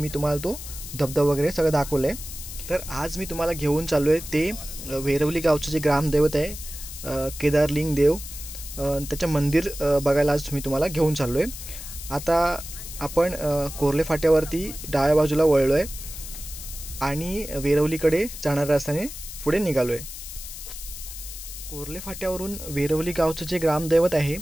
तुम्हाला तो धबधबा वगैरे सगळं दाखवलं आहे. तर आज मी तुम्हाला घेऊन चाललो आहे ते वेरवली गावचं जे ग्रामदैवत आहे केदारलिंग देव, त्याचं मंदिर बघायला आज मी तुम्हाला घेऊन चाललो आहे. आता आपण कोर्ले फाट्यावरती डाव्या बाजूला वळलो आहे आणि वेरवलीकडे जाणाऱ्या रस्त्याने पुढे निघालो आहे. कोर्ले फाट्यावरून वेरवली गावचं जे ग्रामदैवत आहे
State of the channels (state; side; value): noise; left; hiss, 11 dB below the sound